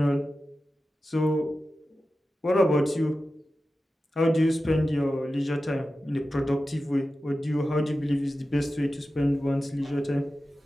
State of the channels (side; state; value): both; normal; correlation 0.93